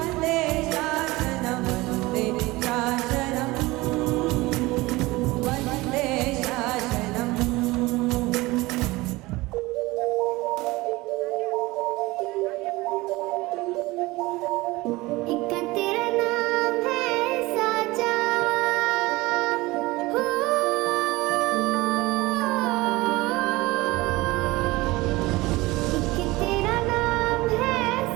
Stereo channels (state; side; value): quieter; left; 20.8 dB